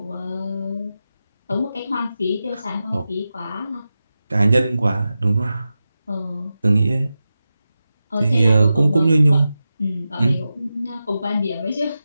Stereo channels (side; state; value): both; inverted; correlation -0.92